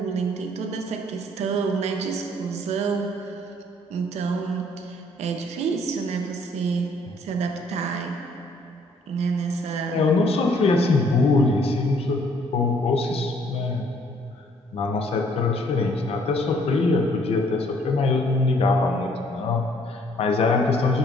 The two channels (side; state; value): both; normal; correlation 0.63